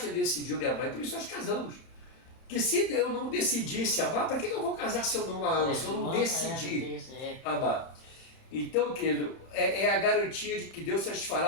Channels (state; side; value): late; right; 31 ms